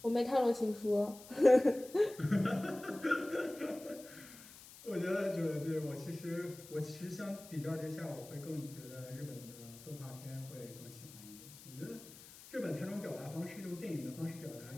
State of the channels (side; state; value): left; noise; hiss, 18 dB below the sound